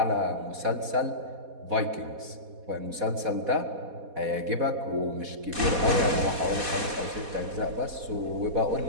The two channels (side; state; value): left; late; 4.1 ms